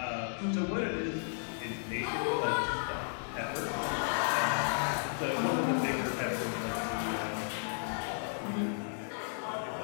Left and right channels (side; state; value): right; silent; digital silence